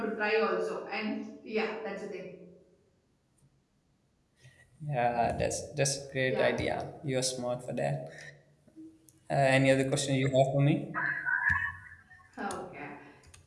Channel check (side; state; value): both; identical; correlation 1.00